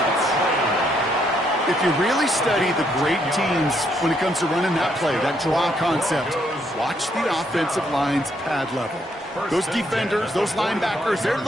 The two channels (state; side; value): normal; both; correlation 0.73